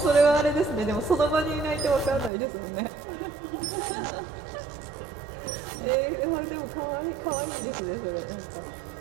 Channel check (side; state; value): left; drops out; at 2.3 s